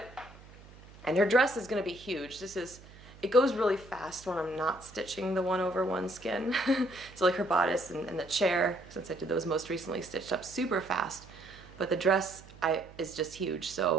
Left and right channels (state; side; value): noise; right; hum, 20 dB below the sound